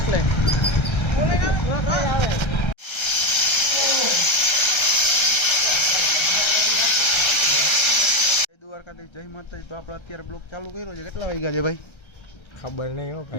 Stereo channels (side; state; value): right; late; 1.3 ms